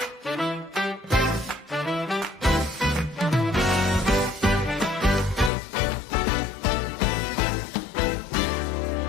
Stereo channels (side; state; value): right; drops out; at 5.5 s